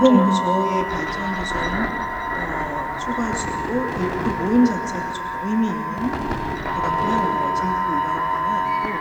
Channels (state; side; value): identical; both; correlation 1.00